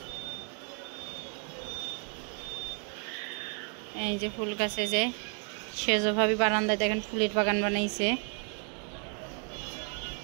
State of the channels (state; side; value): quieter; left; 39.4 dB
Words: এই যে ফুল গাছে যে সেজভাবে বারান্দায় দেখেন ফুলের বাগান বানাইছে।